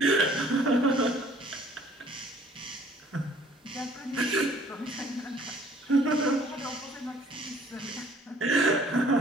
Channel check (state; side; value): normal; both; correlation 0.56